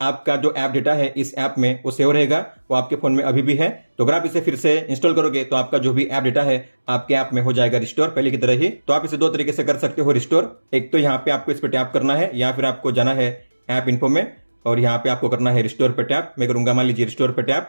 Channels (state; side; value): inverted; both; correlation -1.00